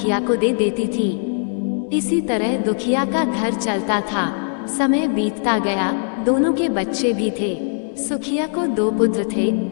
को दे देती थी। इसी तरह दुखिया का घर चलता था। समय बीतता गया, दोनों के बच्चे भी थे। सुखिया को 2 पुत्र थे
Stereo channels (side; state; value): right; silent; digital silence